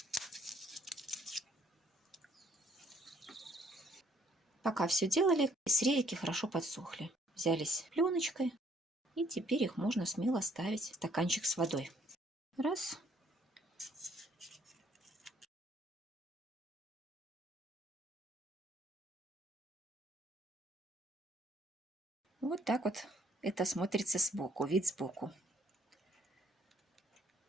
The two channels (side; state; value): both; normal; correlation 0.64